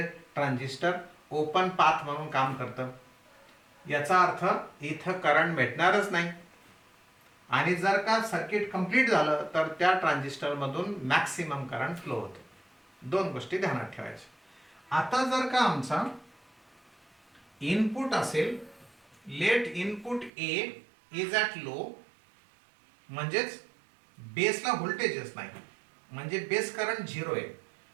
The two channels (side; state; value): left; drops out; at 20.3 s